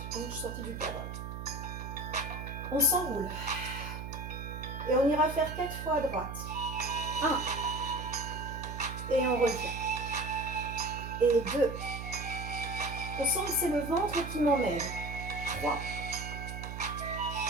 Je suis sortie du cadre. On s'enroule. Et on ira faire 4 fois à droite. 1. Et on revient. Et 2. On sent que c'est le ventre qui m'emmène. 3.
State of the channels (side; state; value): right; noise; hum, 7 dB below the sound